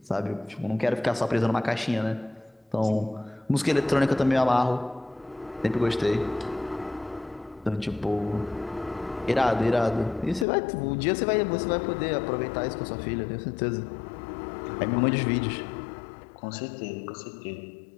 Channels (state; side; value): drops out; right; at 10.5 s